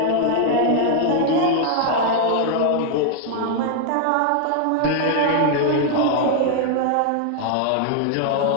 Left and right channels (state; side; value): different; both; correlation 0.00